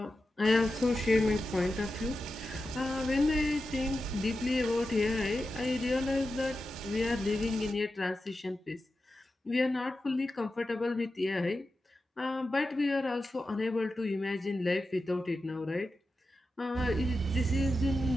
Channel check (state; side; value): normal; both; correlation 0.91